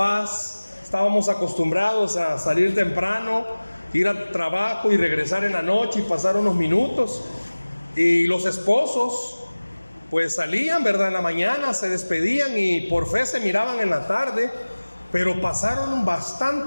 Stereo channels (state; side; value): inverted; both; correlation -1.00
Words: estábamos acostumbrados a salir temprano, ir al trabajo y regresar en la noche y pasar unos minutos. Y los esposos pues salían, ¿verdad? En la mañana, se despedían y por fe se miraban en la tarde, pero pasaron